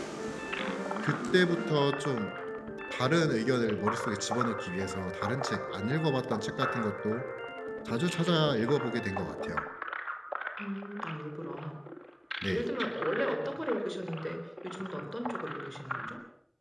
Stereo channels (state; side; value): identical; both; correlation 1.00